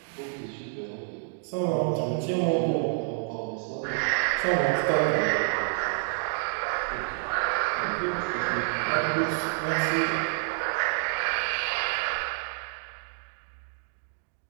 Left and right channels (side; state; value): left; silent; digital silence